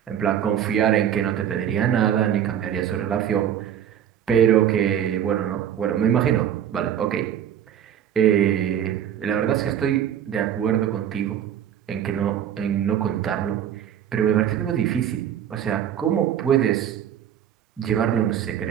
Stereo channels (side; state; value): left; quieter; 9.8 dB